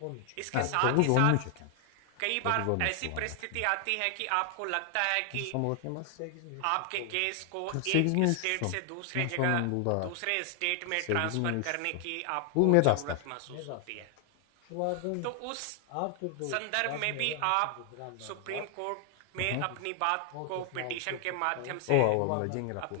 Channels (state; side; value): different; both; correlation 0.00